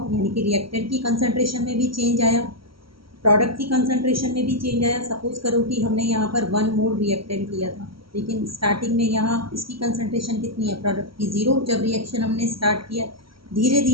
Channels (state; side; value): late; left; 0.74 ms